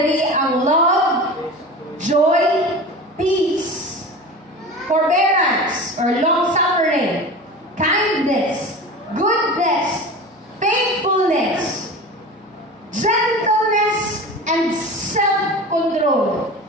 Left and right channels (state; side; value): normal; both; correlation 0.33